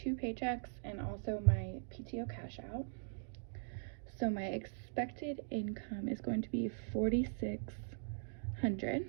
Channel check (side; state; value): left; silent; digital silence